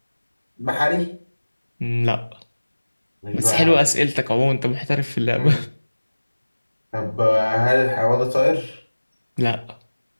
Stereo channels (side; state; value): both; inverted; correlation -1.00